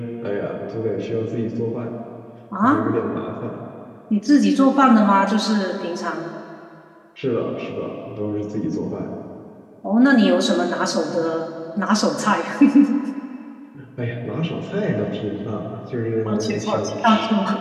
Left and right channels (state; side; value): identical; both; correlation 1.00